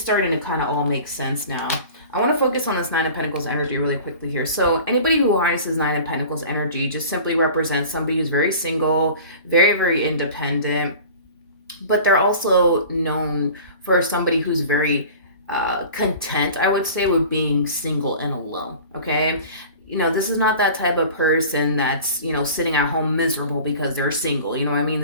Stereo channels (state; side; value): inverted; both; correlation -0.42